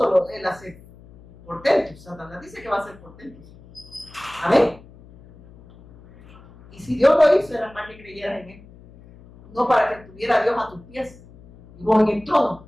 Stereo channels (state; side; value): noise; left; hum, 22 dB below the sound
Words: Él hace portentos, Satanás dice que va a hacer portentos. Amén. Y si Dios lo hizo, era para que creyeras en Él. No para que tuviera a Dios a tus pies. Y vos en el trono.